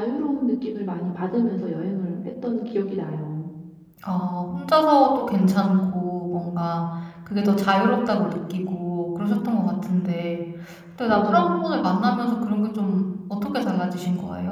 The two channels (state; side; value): identical; both; correlation 1.00